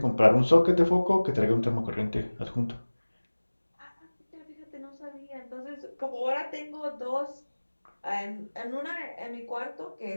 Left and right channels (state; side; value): inverted; both; correlation -1.00